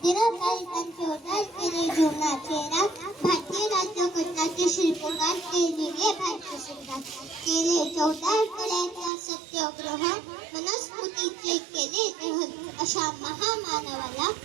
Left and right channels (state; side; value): drops out; left; at 9.1 s